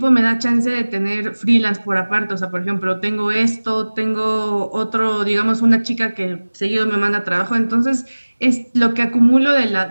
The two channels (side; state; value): both; inverted; correlation -1.00